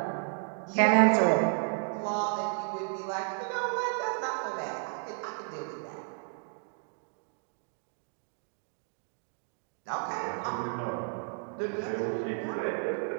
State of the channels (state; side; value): silent; left; 56 dB below the other